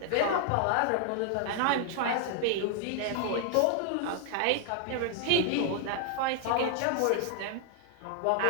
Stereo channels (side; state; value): both; different; correlation 0.00